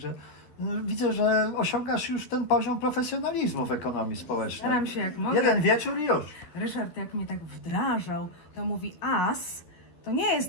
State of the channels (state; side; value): late; right; 12 ms